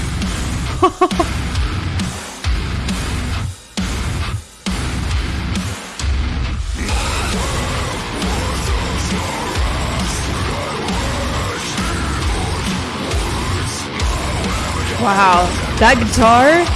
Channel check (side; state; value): both; identical; correlation 1.00